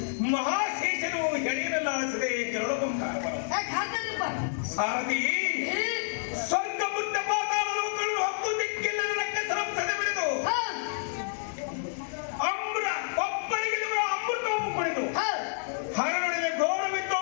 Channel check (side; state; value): right; silent; 59 dB below the other